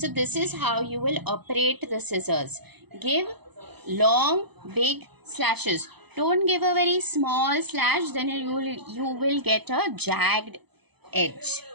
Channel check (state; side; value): late; left; 0.99 ms